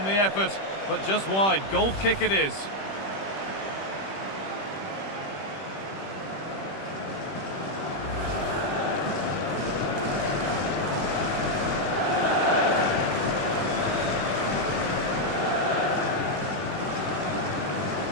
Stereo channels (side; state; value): right; late; 21 ms